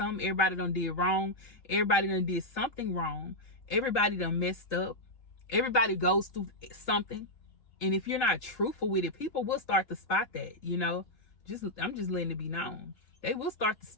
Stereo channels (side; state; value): right; late; 3.3 ms